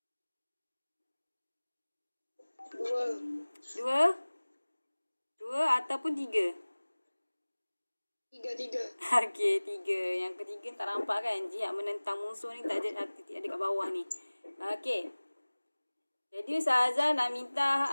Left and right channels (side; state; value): both; inverted; correlation -1.00